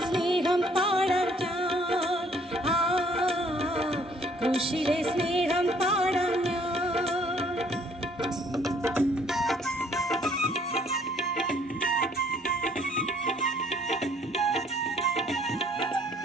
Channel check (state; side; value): normal; both; correlation 0.61